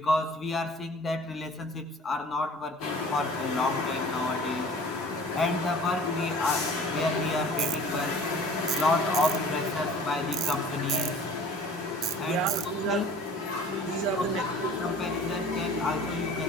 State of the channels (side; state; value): both; normal; correlation 0.47